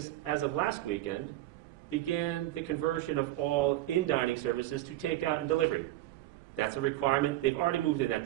as of last weekend, began the conversion of all in-dining services to takeout and delivery. That's a requirement. They've already moved in that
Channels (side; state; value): left; quieter; 15.8 dB